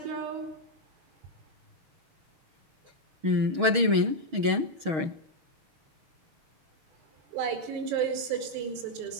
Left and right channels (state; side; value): late; left; 6.3 ms